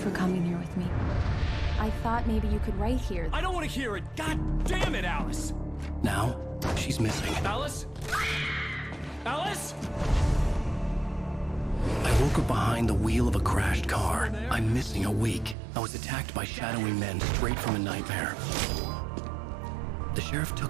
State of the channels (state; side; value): drops out; left; at 15.6 s